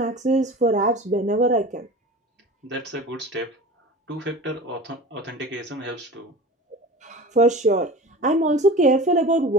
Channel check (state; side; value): normal; both; correlation 0.36